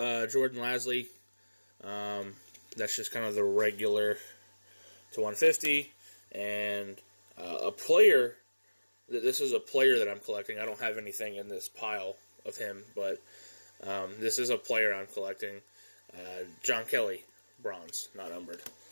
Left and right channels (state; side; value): inverted; both; correlation -1.00